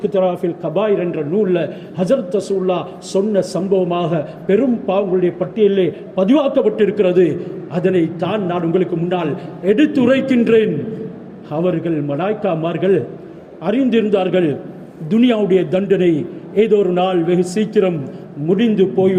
கபாயிர் என்ற நூலில் ஹஜ்ரத் ரசூலுல்லாஹ் சொன்ன சம்பவமாக பெரும் பாவங்களுடைய பட்டியலிலே பதிவாக்கப்பட்டிருக்கிறது. அதனை தான் நான் உங்களுக்கு முன்னால் எடுத்துரைக்கின்றேன். அவர்கள் மலாய்க்காமார்கள் அறிந்திருந்தார்கள், துனியாவுடைய தண்டனை ஏதோ ஒரு நாள் வெகு சீக்கிரம் முடிந்து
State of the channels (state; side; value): identical; both; correlation 1.00